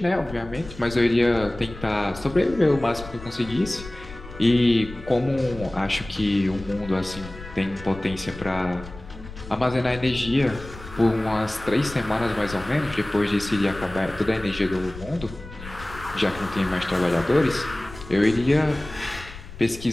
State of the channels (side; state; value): left; noise; rumble, 15 dB below the sound